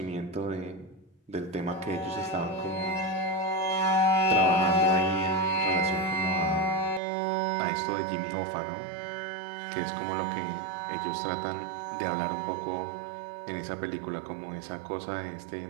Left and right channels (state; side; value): drops out; left; at 7.0 s